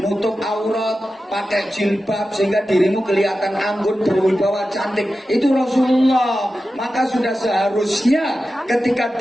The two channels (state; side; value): normal; both; correlation 0.93